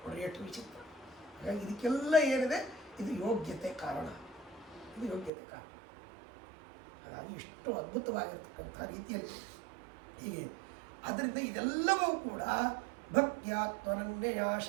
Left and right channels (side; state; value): left; drops out; at 5.3 s